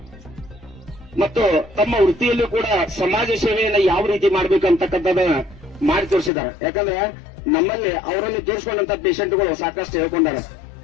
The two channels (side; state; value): right; drops out; at 6.3 s